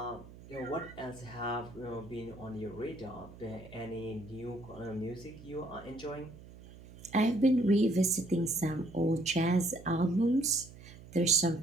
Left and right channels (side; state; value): right; noise; hum, 18 dB below the sound